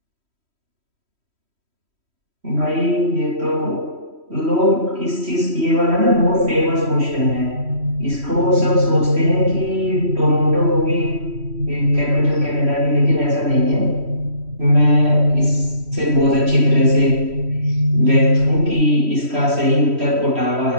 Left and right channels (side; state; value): left; late; 3.1 ms